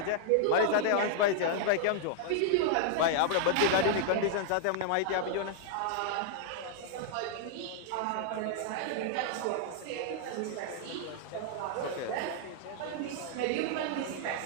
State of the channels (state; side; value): different; both; correlation -0.01